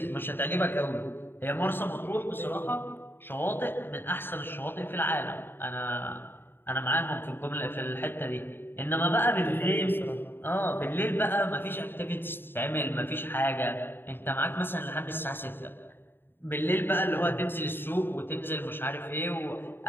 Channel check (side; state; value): right; late; 0.10 ms